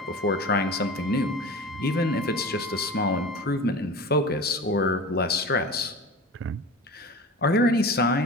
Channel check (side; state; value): both; normal; correlation 0.34